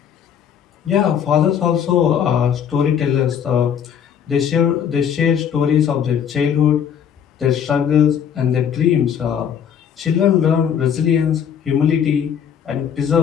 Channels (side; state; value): right; quieter; 8.3 dB